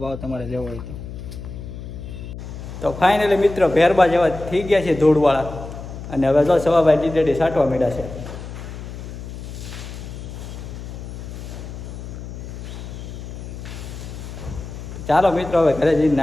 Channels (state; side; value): noise; left; hum, 10 dB below the sound